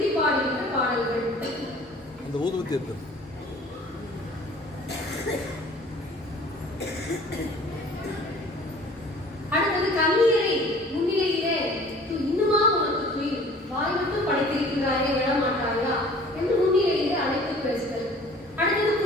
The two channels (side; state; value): both; normal; correlation 0.49